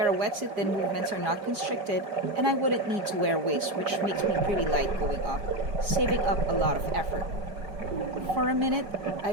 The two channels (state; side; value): late; left; 4.9 ms